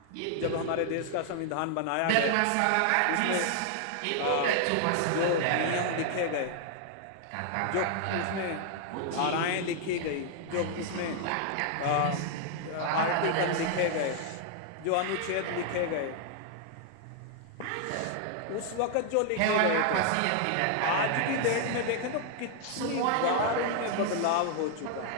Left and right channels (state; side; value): different; both; correlation 0.00